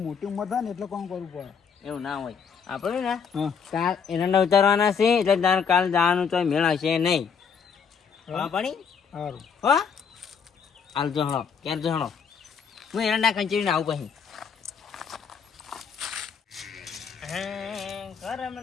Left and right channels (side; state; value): right; quieter; 6.6 dB